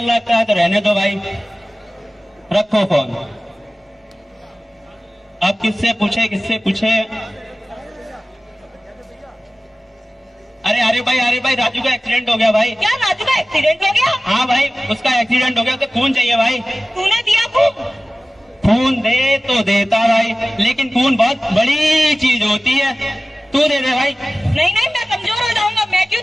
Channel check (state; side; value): normal; both; correlation 0.97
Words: लगता है तो रहने दो भाई, रखो फोन। अब किससे पूछे, किससे पूछे? अरे भाई, राजू का एक्सीडेंट हो गया भाई। क्या राजू का एक्सीडेंट हो गया? हाँ भाई, उसका एक्सीडेंट हो गया, उसे खून चाहिए भाई। तूने दिया खून? खून दे तो देता भाई, लेकिन खून बहुत बड़ी चीज होती है। तू दे दे भाई। नहीं, मैं कमजोर हो जाऊंगा, मैं क्यों